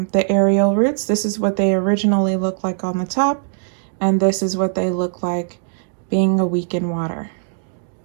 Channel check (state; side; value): silent; left; digital silence